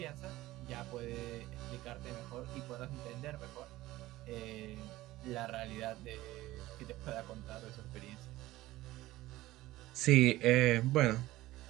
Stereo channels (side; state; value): left; quieter; 17.1 dB